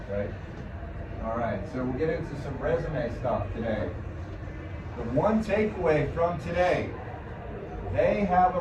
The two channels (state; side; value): identical; both; correlation 1.00